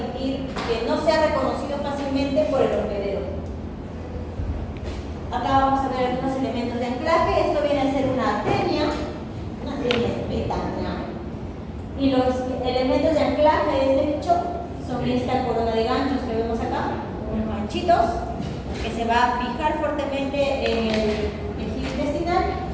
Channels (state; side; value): identical; both; correlation 1.00